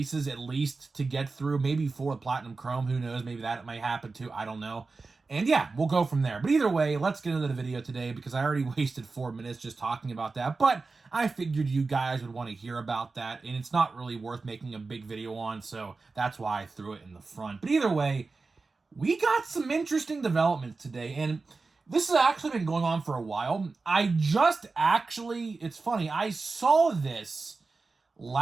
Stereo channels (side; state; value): left; quieter; 4.0 dB